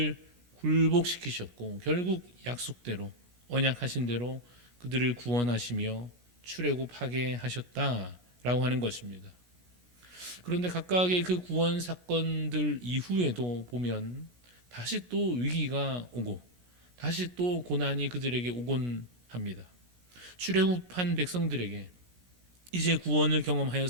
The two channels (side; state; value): left; late; 17 ms